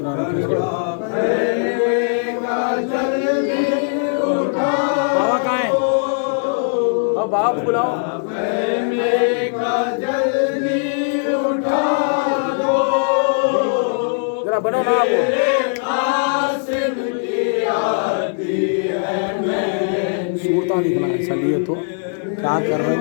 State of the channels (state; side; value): silent; right; digital silence